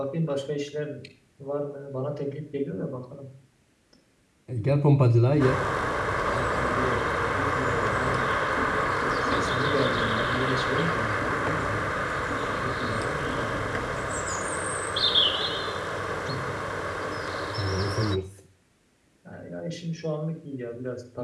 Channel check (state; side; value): identical; both; correlation 1.00